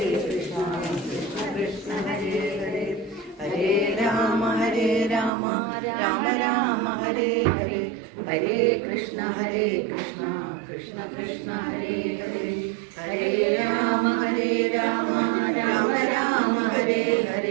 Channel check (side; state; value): left; drops out; at 5.3 s